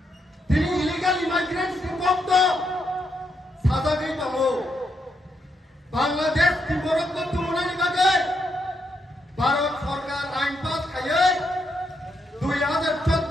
दिनै इलिगल इमाइग्रेंट्स नि कम दं साजागै दङ बांलादेश तिब्बत को तुलनानि बागै भारत सरकार आइन पास खायै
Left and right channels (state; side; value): normal; both; correlation 0.79